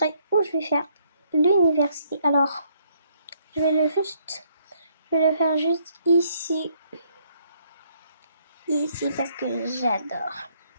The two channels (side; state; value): both; inverted; correlation -0.69